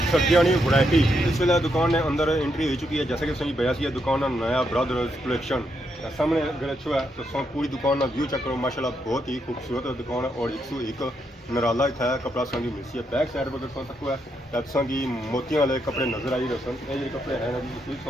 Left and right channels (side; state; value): both; normal; correlation 0.79